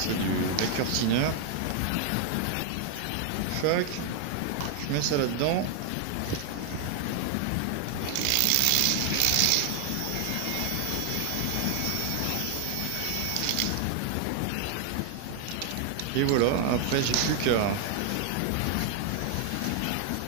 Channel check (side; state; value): both; different; correlation 0.00